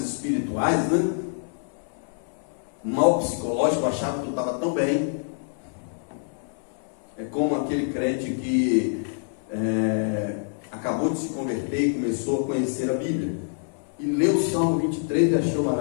espirituais, né? O mal psicológico achava que eu estava tão bem. É como aquele crente que acabou de se converter e começou a conhecer a Bíblia, e leu o Salmo 23 e achou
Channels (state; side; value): silent; right; 59 dB below the other